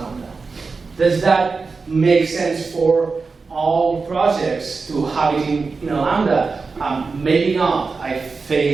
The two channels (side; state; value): left; quieter; 4.4 dB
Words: Does that make sense for all projects to have it in a Lambda? Maybe not. I